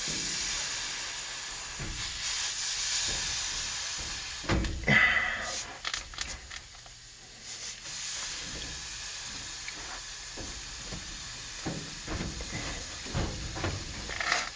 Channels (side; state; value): both; identical; correlation 1.00